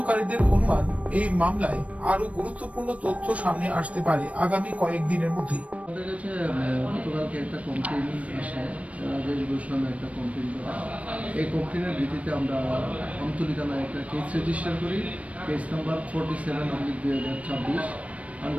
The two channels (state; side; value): late; left; 0.065 ms